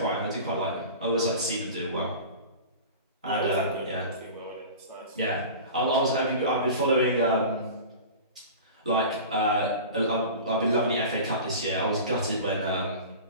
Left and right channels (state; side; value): inverted; both; correlation -0.35